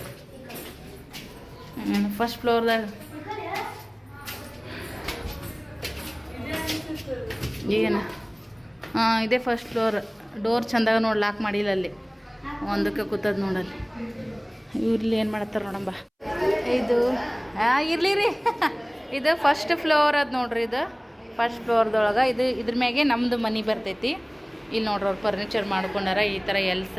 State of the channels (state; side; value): identical; both; correlation 1.00